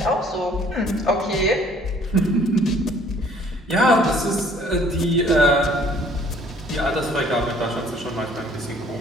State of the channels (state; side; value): normal; both; correlation 0.57